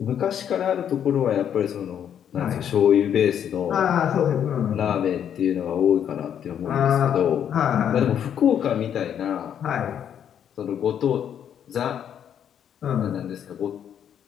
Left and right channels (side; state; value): right; quieter; 9.1 dB